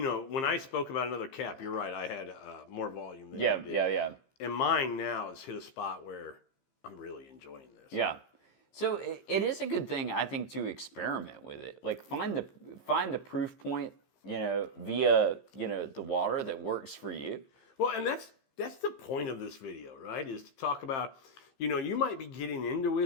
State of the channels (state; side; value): late; right; 15 ms